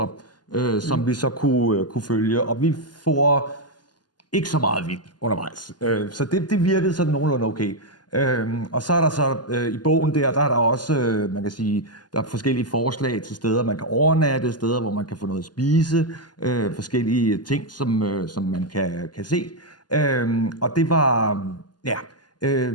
som vi så kunne følge, og vi får ikke så meget vildt undervejs. Så det virkede sådan nogenlunde okay. Og så er der så i bogen der er der også, man kan sige, der er forskellige forslag til steder, man kan overnatte, steder, hvor man kan få noget at spise, forskellige ting, som man kan se. Og det var,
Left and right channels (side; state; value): right; late; 0.70 ms